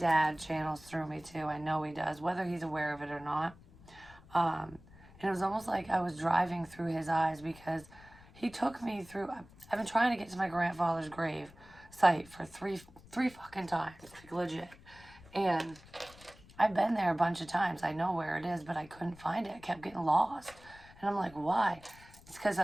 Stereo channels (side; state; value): left; noise; rumble, 22 dB below the sound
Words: channels through me too. I know he does, whether he's aware of it or not. And it was almost like I was driving through his eyes because he took me through. I've been trying to get to my grandfather's grave site for three fucking times, like legit. And I've been there a bunch of times. I know where it is, but I couldn't find it. I kept getting lost. And I'm like, why? It's because